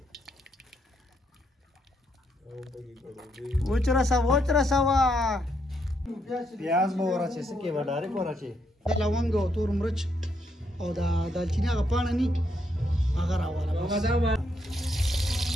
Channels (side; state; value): both; normal; correlation 0.76